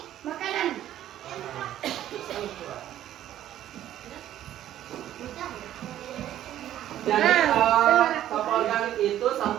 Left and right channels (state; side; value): quieter; left; 12.2 dB